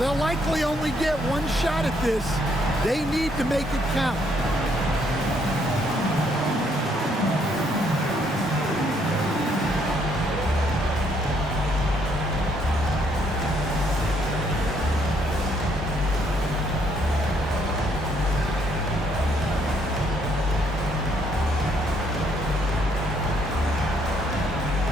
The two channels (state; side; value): normal; both; correlation 0.70